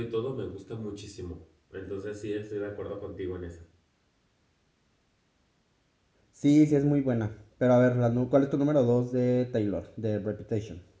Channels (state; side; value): identical; both; correlation 1.00